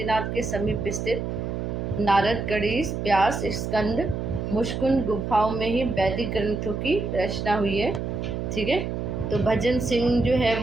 के समीप स्थित नारद, गणेश, व्यास, स्कंद, मुष्कुंद गुफाओं में ही वैदिक ग्रंथों की रचना हुई है। ठीक है, तो भजन सिंह जो है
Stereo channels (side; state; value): right; noise; hum, 3 dB below the sound